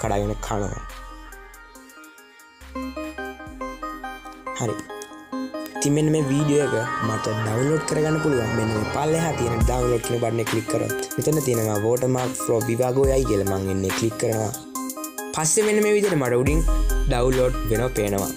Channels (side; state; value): both; identical; correlation 1.00